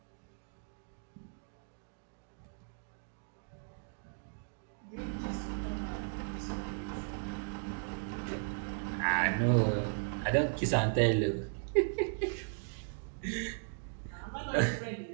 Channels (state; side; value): silent; left; digital silence